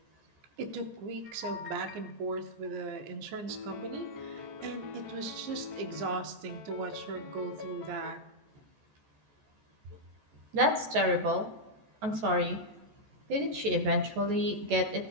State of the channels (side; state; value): left; late; 14 ms